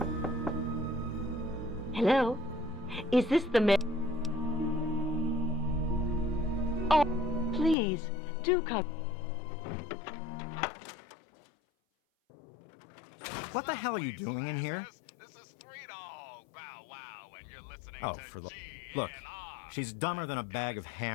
Hello? Is this the mayor? Oh, please, do come. What the hell are you doing in here? This is Three Dog Bow Wow, and you're listening Oh, to for the... GNR. Look, she's dumber than a bag of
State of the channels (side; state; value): right; drops out; at 7.8 s